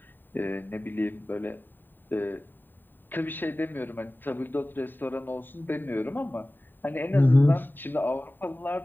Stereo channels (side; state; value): right; late; 0.092 ms